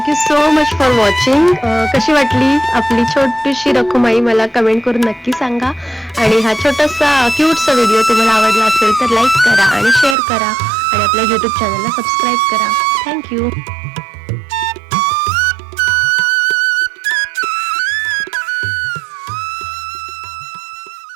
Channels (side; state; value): left; drops out; at 10.2 s